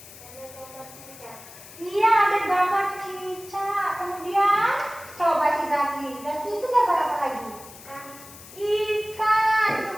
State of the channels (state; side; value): noise; left; hiss, 18 dB below the sound